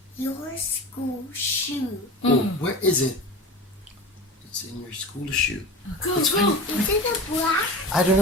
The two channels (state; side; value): normal; both; correlation 0.32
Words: your school shoe. Oh, where is it? It's in your school shoe. Go, Let's go. find it. Is it a black? I don't